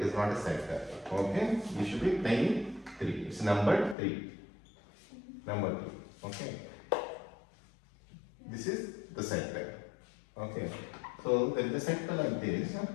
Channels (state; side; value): drops out; right; at 4.0 s